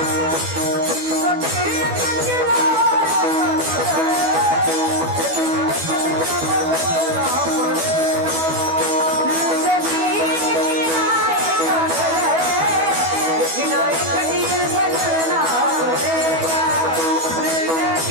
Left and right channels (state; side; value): late; left; 12 ms